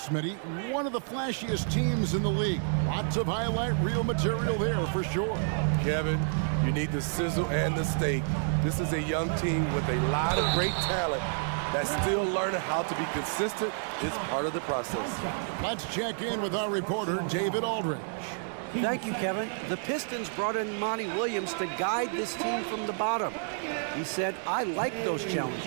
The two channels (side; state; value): left; silent; 58 dB below the other